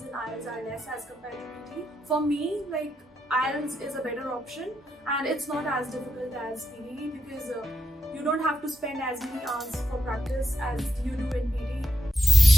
in IELTS are less as compared to PT. For me, like IELTS is a better option and it's not as difficult as PT because you don't have to spend as many hours for practice as you do in PT.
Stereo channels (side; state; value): both; normal; correlation 0.85